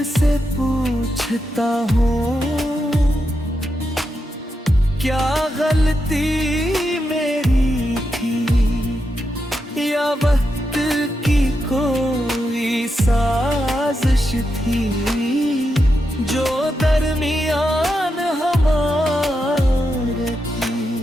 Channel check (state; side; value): normal; both; correlation 0.85